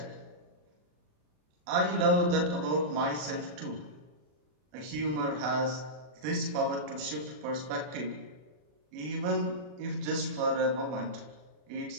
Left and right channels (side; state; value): left; late; 40 ms